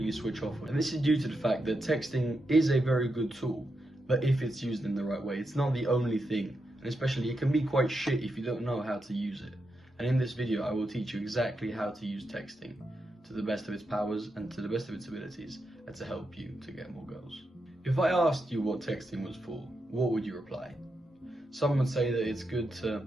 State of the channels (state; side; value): normal; both; correlation 0.85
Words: switch off. And this is due to the fact that texting is a very good tool, but if it's used in the right way, it's not the only thing. And especially, it can be quite shit if you don't know how to use it. And in this video, I will teach you exactly how to use texting to the best of its powers and to the best of its abilities, and to help you to get more girls. If I asked you what texting was for, what would you reply? Some would say that it's good